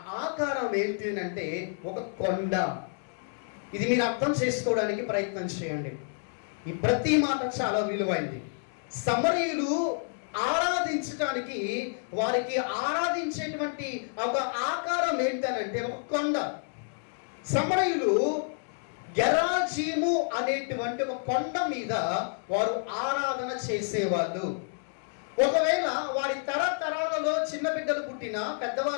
ఆకారం ఏంటి అంటే ఒక కొండ. ఇది మీరు అర్థం చేసుకోవడానికి ప్రయత్నం చేయండి. ఈ ప్రతి మాట చాలా విలువైంది. సమరయులు ఆరాధించడానికి వారికి ఆరాధించేటువంటి ఒక ఆకారం ఏంటనంటే ఒక కొండ. సమరయులు గెరాజీము అనేటువంటి ఒక కొండ మీద వారు ఆరాధన చేసేవాళ్ళు. ఒకవేళ వారి తరతరాలలో చిన్న బిడ్డలు పుట్టినా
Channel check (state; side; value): silent; right; 58 dB below the other